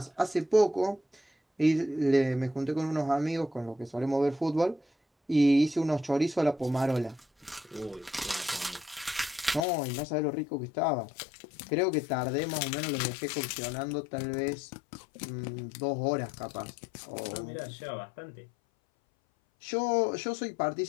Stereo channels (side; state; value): right; drops out; at 9.7 s